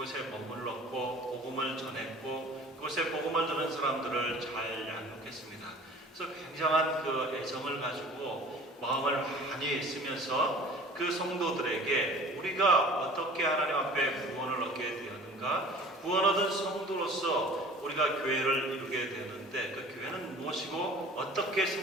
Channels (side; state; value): both; normal; correlation 0.45